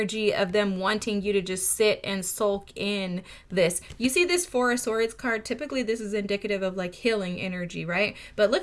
of them wanting you to just sit and sulk in this. You see this Four of Swords card? Typically, this is indicative of like healing energy, right? But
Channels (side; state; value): both; identical; correlation 1.00